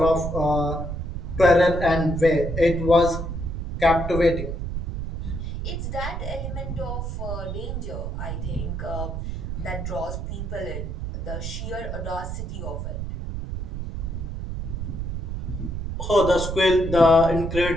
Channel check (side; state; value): right; noise; rumble, 4 dB below the sound